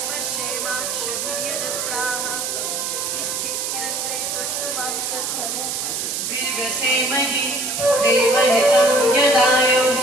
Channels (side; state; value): right; noise; hiss, 2 dB below the sound